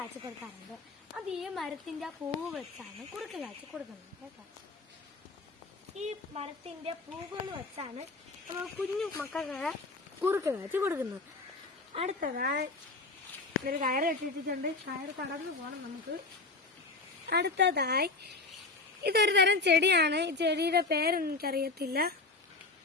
കൊടുക്കാറുണ്ട്. അത് ഈ മരത്തിൻ്റെ പൂവ് വെച്ചാണ് കുറുക്ക് കാച്ചി കൊടുക്കുന്നത് കേട്ടോ. ഈ മരത്തിൻ്റെ പൂവുകൾ വെച്ചാണ് നമ്മൾ കുഞ്ഞു മക്കൾക്ക് കുറുക്ക് കാച്ചി കൊടുക്കുന്നത്. അടുത്തതായി ഒരു കയറ് കെട്ടിയിട്ടുണ്ട്. കയറ് കടന്നു പോകണം നമുക്ക്. അടുത്തതായി ഇതൊരു തരം ചെടിയാണ്. ഈ ചെടിയുടെ പേരെനിക്കറിയത്തില്ല.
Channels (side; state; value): right; quieter; 3.6 dB